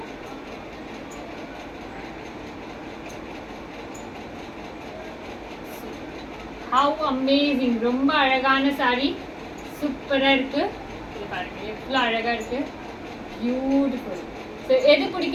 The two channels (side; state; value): both; identical; correlation 1.00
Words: How amazing! ரொம்ப அழகான saree, சூப்பரா இருக்கு. இது பாருங்க எவ்வளவு அழகா இருக்கு, பியூட்டிஃபுல். ஸோ எது